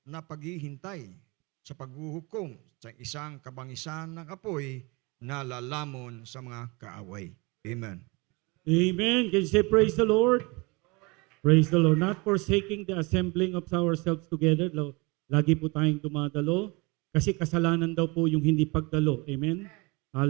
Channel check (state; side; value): quieter; left; 27.0 dB